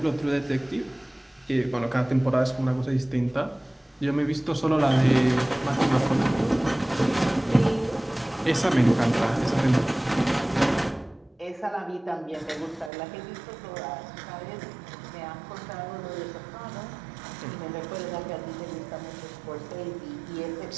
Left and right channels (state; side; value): drops out; left; at 12.9 s